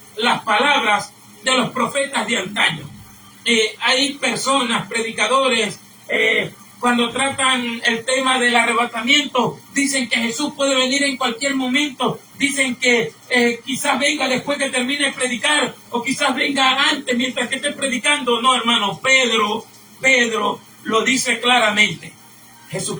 las palabras de los profetas de antaño. Hay personas, predicadores, cuando tratan el tema del arrebatamiento, dicen que Jesús puede venir en cualquier momento, dicen que quizás venga después que termine de predicar, o quizás venga antes mientras que esté predicando. No, hermano, Pedro lo dice claramente.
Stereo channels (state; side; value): identical; both; correlation 1.00